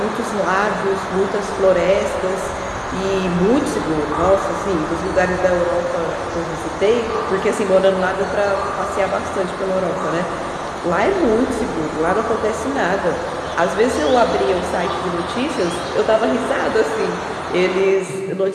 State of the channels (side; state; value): both; identical; correlation 1.00